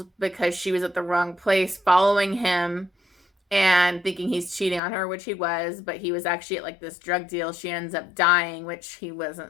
because she was at the wrong place following him and thinking he's cheating on her, which he was, but he was actually at like this drug deal. She ends up dying, which he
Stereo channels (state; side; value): drops out; right; at 4.8 s